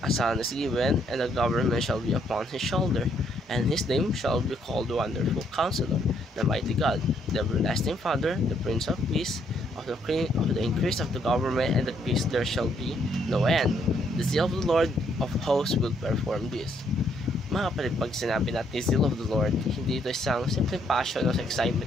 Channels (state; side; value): normal; both; correlation 0.71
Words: a son is given, and the government shall be upon his shoulder, and his name shall be called Wonderful Counselor, the Mighty God, the Everlasting Father, the Prince of Peace. Of the increase of the government and the peace there shall be no end. The zeal of the Lord of hosts will perform this." Mga kapatid, pag sinabi natin zeal of the Lord, hindi ito isang simple passion o